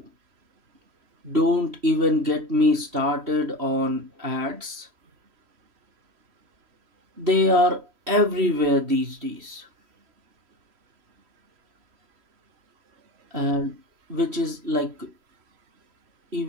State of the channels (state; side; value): late; left; 3.1 ms